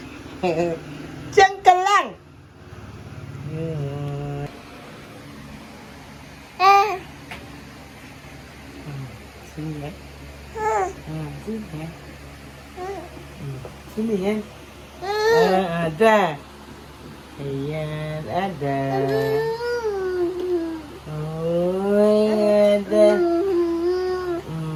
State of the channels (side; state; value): both; identical; correlation 1.00